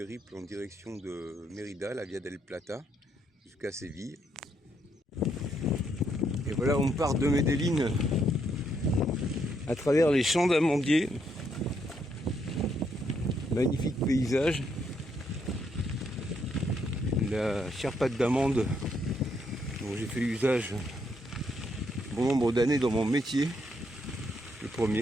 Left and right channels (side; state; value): both; normal; correlation 0.75